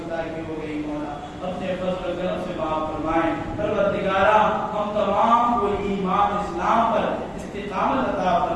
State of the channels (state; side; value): identical; both; correlation 1.00